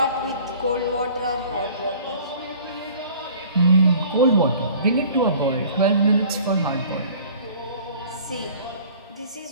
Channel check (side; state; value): both; inverted; correlation -0.49